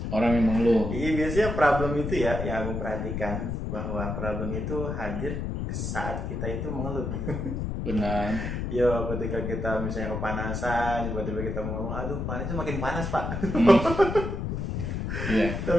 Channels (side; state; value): left; noise; rumble, 3 dB below the sound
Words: Orang yang mengeluh. Iya, biasanya problem itu ya yang aku perhatikan, bahwa problem itu hadir saat kita itu mengeluh. Benar. Yo, ketika kita misalnya kepanasan, tiba-tiba kita mengeluh, aduh panasnya makin panas Pak. Iya.